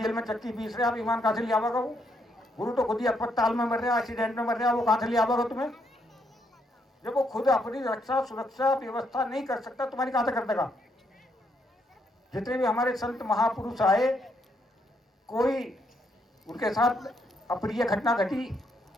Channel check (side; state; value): both; normal; correlation 0.75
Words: में चक्की पीस रहे, आप विमान कहाँ से ले आवेगा वो? गुरु तो खुद ही अस्पताल में मर रहे, एक्सीडेंट में मर रहे, वो कहाँ से ले आवेगा तुम्हें? जब वो खुद अपनी रक्षा सुरक्षा व्यवस्था नहीं कर सकता, तुम्हारी कहाँ से कर देगा? जितने भी हमारे संत महापुरुष आए, कोई उनके साथ अप्रिय घटना घटी,